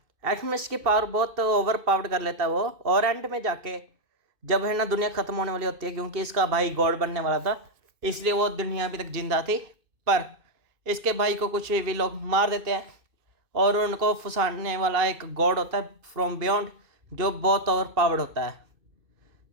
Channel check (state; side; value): late; left; 2.6 ms